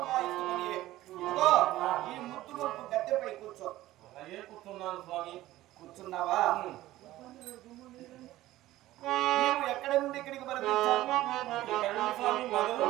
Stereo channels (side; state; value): left; quieter; 15.7 dB